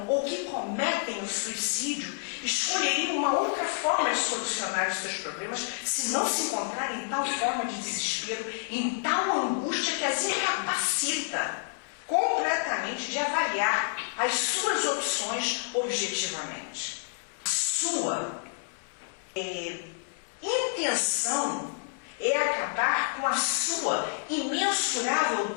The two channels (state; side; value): silent; right; 59 dB below the other